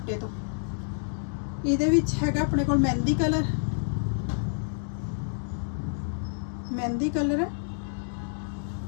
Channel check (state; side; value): silent; right; digital silence